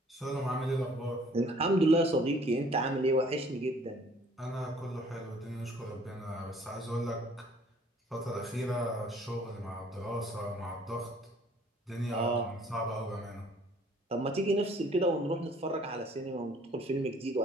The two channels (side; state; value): both; normal; correlation 0.57